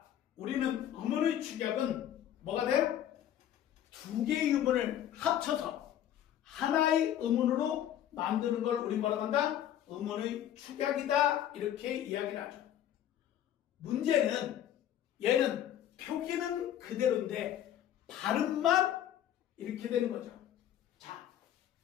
우리는 음운의 축약은 뭐가 돼요? 두 개의 음운을 합쳐서 하나의 음운으로 만드는 걸 우리 뭐라고 한다? 음운의 축약이다. 이렇게 이야기를 하죠. 문제는 얘는 표기는 그대로인데 발음만 이렇게 되는 거죠. 자,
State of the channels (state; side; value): quieter; right; 11.1 dB